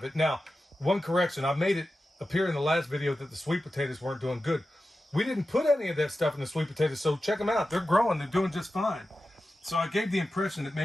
it. Now, one correction. I made it appear in the last video that the sweet potatoes weren't doing good. We didn't put any of that stuff in the sweet potatoes, so check them out. They're growing. They're doing just fine. So I gave the impression that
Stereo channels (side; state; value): both; normal; correlation 0.93